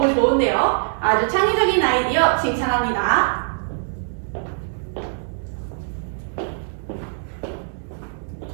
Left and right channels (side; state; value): left; silent; 61 dB below the other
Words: 좋은데요. 아주 창의적인 아이디어 칭찬합니다.